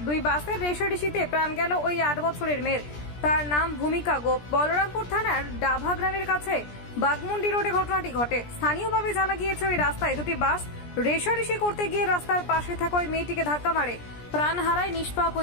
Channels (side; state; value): right; late; 17 ms